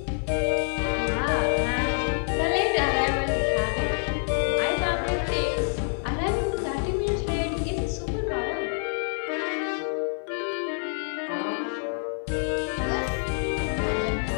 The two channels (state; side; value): silent; right; digital silence